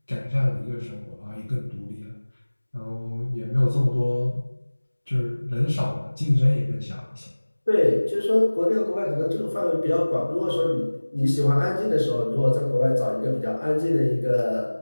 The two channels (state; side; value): inverted; both; correlation -1.00